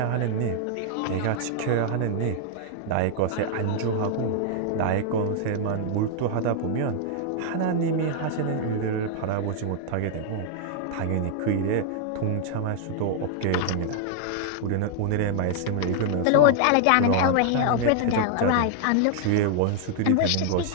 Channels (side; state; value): both; different; correlation 0.00